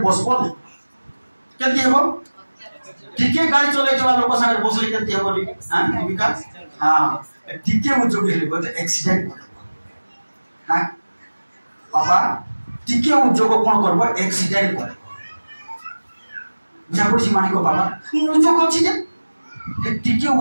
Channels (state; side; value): inverted; both; correlation -1.00